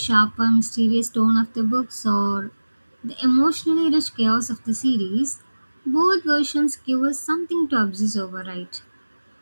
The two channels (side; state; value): both; inverted; correlation -1.00